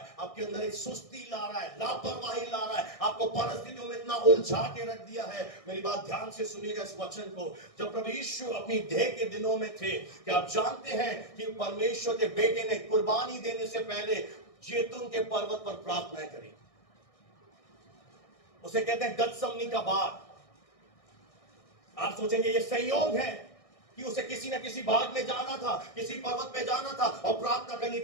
आपके अंदर एक सुस्ती ला रहा है, लापरवाही ला रहा है, आपको परिस्थितियों में इतना उलझा के रख दिया है। मेरी बात ध्यान से सुनिएगा इस वचन को। जब प्रभु यीशु अपनी देह के दिनों में थे, क्या आप जानते हैं कि परमेश्वर के बेटे ने कुर्बानी देने से पहले जैतून के पर्वत पर प्रार्थना करी? उसे कहते हैं गतसमनी का बाग। आप सोचेंगे ये संयोग है कि उसे किसी न किसी बाग में जाना था, किसी पर्वत पे जाना था और प्रार्थना करनी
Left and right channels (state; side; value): late; right; 1.6 ms